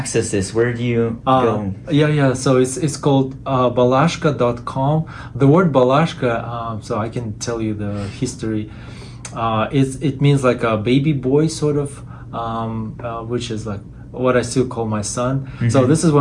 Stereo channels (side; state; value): both; identical; correlation 1.00